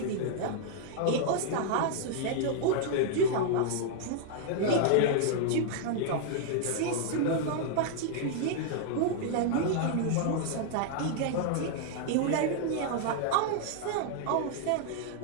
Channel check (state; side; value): different; both; correlation -0.01